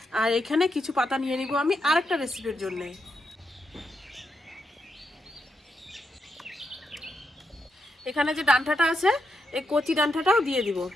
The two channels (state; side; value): normal; both; correlation 0.83